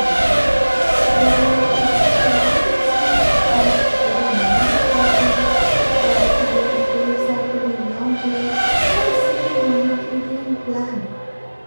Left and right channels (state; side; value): inverted; both; correlation -1.00